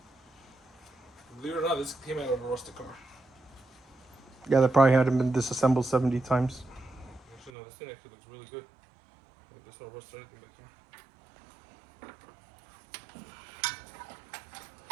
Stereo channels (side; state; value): left; drops out; at 7.5 s